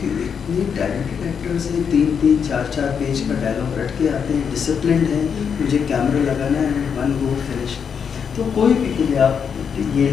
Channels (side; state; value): right; quieter; 6.9 dB